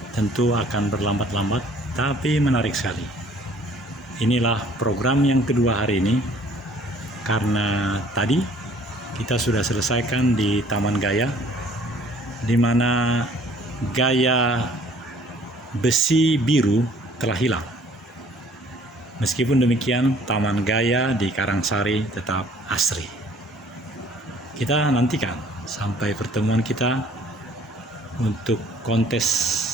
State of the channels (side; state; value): both; normal; correlation 0.56